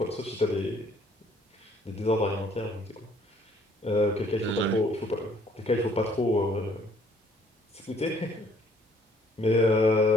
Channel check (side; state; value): both; normal; correlation 0.62